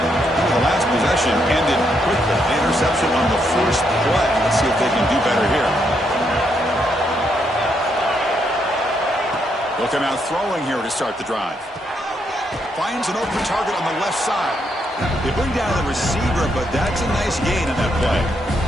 The last possession ended quickly. The interception on the first play. Let's see if they can do better here. Looking out throwing here to start the drive. Finds an open target on the left side. They bring down the receiver, but that's a nice gain on that play.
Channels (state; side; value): normal; both; correlation 0.77